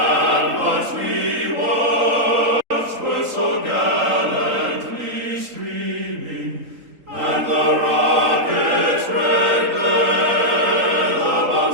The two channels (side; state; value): left; late; 3.8 ms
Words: we watched were so gallantly streaming, and the rocket's red glare, the